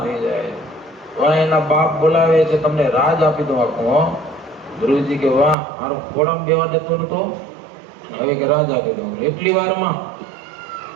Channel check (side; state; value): left; drops out; at 5.6 s